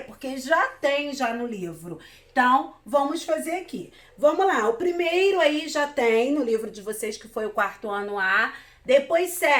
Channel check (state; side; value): identical; both; correlation 1.00